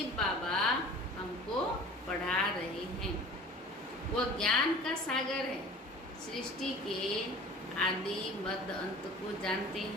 बाबा हमको पढ़ा रहे हैं। वो ज्ञान का सागर है, सृष्टि के आदि मध्य अंत को जानते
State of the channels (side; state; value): both; normal; correlation 0.43